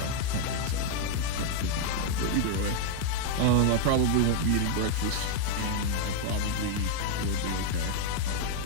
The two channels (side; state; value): both; different; correlation 0.00